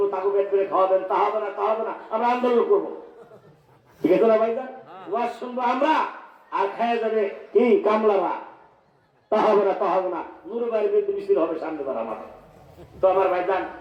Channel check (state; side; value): identical; both; correlation 1.00